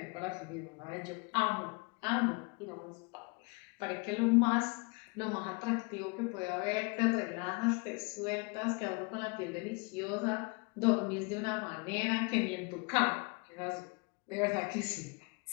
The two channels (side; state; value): right; quieter; 30.4 dB